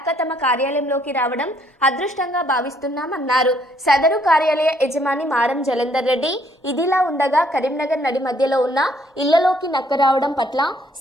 తమ కార్యాలయంలోకి రావడం అదృష్టంగా భావిస్తున్నామన్నారు. సదరు కార్యాలయ యజమాని మారం జలంధర్ రెడ్డి. ఇదిలా ఉండగా కరీంనగర్ నడి మధ్యలో ఉన్న ఇళ్లలోకి నక్క రావడం పట్ల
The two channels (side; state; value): both; normal; correlation 0.66